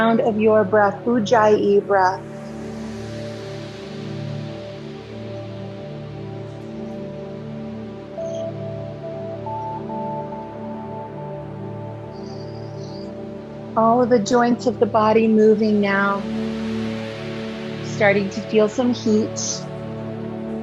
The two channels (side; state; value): both; identical; correlation 1.00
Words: of your breath, Ujjayi breath. All of the joints of the body moving now. Starting to feel some heat.